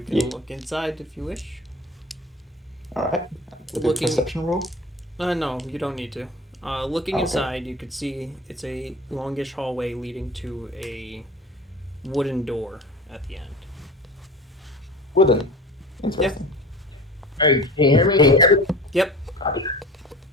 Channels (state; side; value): normal; both; correlation 0.37